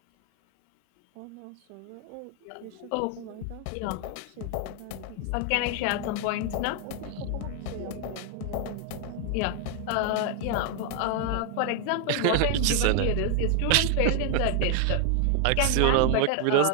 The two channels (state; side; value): different; both; correlation 0.00